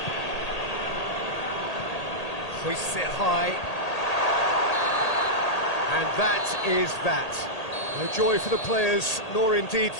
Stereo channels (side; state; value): right; late; 1.8 ms